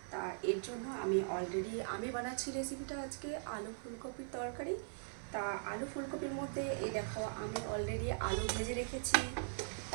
তা এর জন্য আমি বানাচ্ছি রেসিপিটা আজকে আলু ফুলকপির তরকারি। তা আলু ফুলকপির মধ্যে এই দেখো আমি অলরেডি আলু ভেজে রেখেছি।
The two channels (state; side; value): silent; left; 51 dB below the other